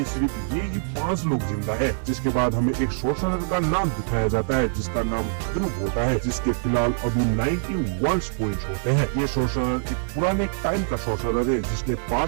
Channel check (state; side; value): silent; left; 62 dB below the other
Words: सिर्फ ये ही 5 लोग जिंदा है। जिसके बाद हमें एक सॉर्सरर का नाम दिखाया जाता है जिसका नाम ध्रुव होता है, जिसके फिलहाल अभी 91 पॉइंट्स होते हैं। ये सॉर्सरर एक पुराने टाइम का सॉर्सरर है जिसने